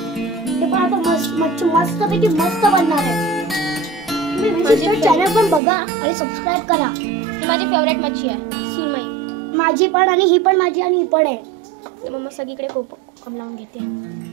ते पण आता मच्छी मस्तपैकी मस्त बनणार आहे। तुम्ही माझे चॅनल पण बघा आणि सबस्क्राइब करा। ही माझी फेवरेट मच्छी आहे, सिमई। माझी पण, आणि ही पण माझी, आणि ही पण आहे। तर मम्मा सगळीकडे कोकण लावून घेते,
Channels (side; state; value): left; drops out; at 5.6 s